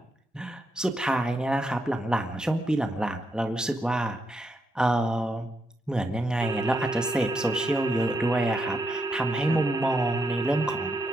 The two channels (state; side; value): normal; both; correlation 0.81